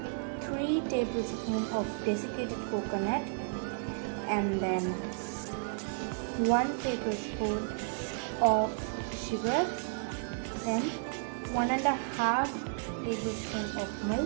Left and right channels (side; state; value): left; silent; digital silence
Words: 3 tablespoons of desiccated coconut, and then 1 tablespoon of sugar, then 1.5 tablespoon of